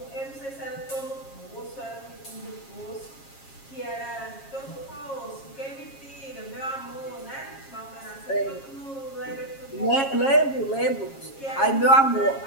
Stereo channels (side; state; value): right; late; 7.4 ms